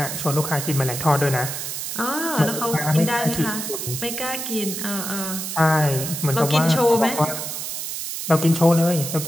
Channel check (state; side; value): noise; right; hiss, 5 dB below the sound